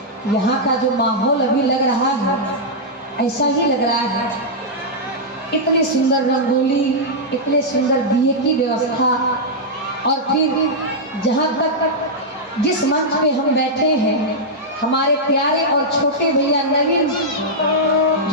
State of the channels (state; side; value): normal; both; correlation -0.07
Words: यहाँ का जो माहौल अभी लग रहा है ऐसा ही लग रहा है। इतनी सुंदर रंगोली, इतने सुंदर दिए की व्यवस्था, और फिर जहाँ तक जिस मंच पे हम बैठे हैं, हमारे प्यारे और छोटे भैया नवीन